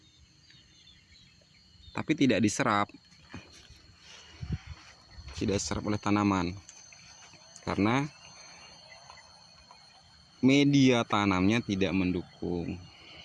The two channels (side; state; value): both; identical; correlation 1.00